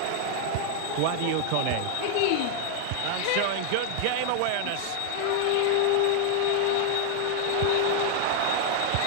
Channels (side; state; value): both; different; correlation 0.00